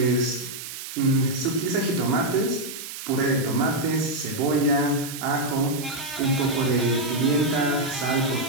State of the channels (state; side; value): noise; right; hiss, 10 dB below the sound